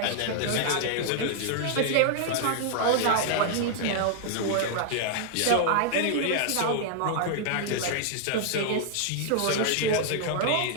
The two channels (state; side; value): different; both; correlation 0.00